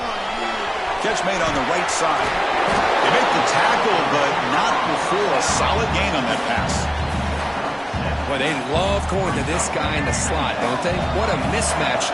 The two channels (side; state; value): both; identical; correlation 1.00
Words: Catch made on the right side. They make the tackle, but not before a solid gain on that pass. Boy, they love going to this guy in the slot, don't they? What a mismatch